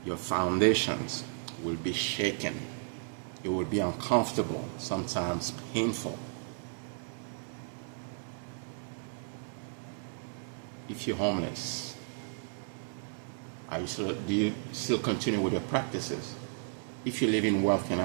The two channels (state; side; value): silent; left; 55 dB below the other